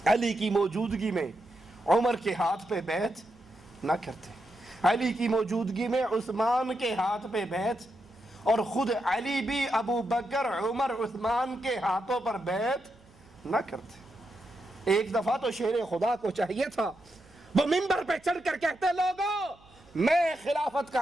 علی کی موجودگی میں عمر کے ہاتھ پہ بیعت نہ کرتے، علی کی موجودگی میں عثمان کے ہاتھ پہ بیعت، اور خود علی بھی ابو بکر عمر عثمان کے ہاتھوں پر بیعت نہ کرتے۔ ایک دفعہ تو شیر خدا کو چاہیے تھا وہ منبر پہ چڑھ کر کہتے لوگوں میں خلافت کا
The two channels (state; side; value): noise; right; hum, 27 dB below the sound